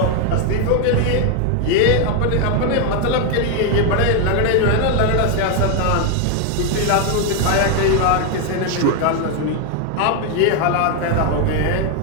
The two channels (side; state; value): both; different; correlation 0.01